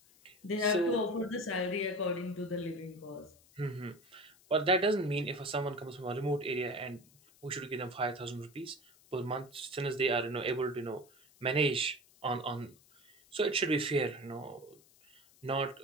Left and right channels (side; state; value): left; noise; hiss, 28 dB below the sound